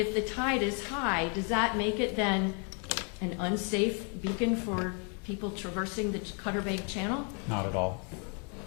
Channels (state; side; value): quieter; right; 38.2 dB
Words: the tide is high, does that make it then an unsafe beacon for people traversing the Cutter Bank Channel? Not at all.